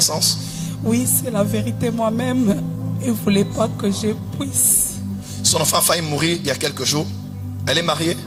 sens? Oui, c'est la vérité. Moi-même, il ne voulait pas que je puisse. Son enfant a failli mourir il y a quelques jours. Elle est mariée?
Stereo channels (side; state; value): both; identical; correlation 1.00